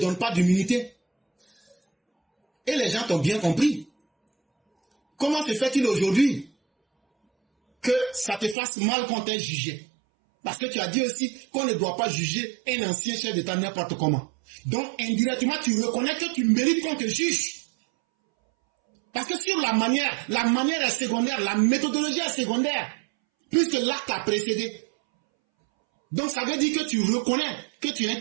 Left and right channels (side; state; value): left; drops out; at 8.6 s